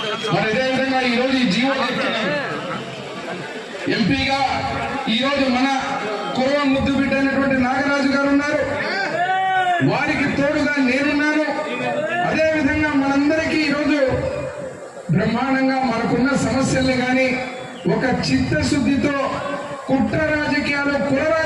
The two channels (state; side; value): identical; both; correlation 1.00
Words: మరి అదేవిధంగా ఈరోజు ఈ జీవో ఎంపీగా ఈరోజు మన కురవ ముద్దు బిడ్డ అయినటువంటి నాగరాజు గారు ఉన్నారు. వారికి తోడుగా నేనున్నాను. అదేవిధంగా మనందరికీ ఈరోజు బ్రహ్మాండంగా మనకున్న సమస్యల్ని కానీ ఒక చిత్తశుద్ధితో కుట్ర రాజకీయాలు కుల